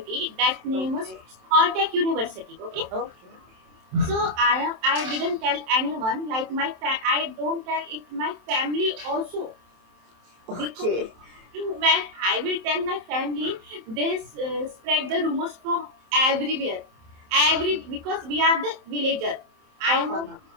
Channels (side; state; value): left; late; 27 ms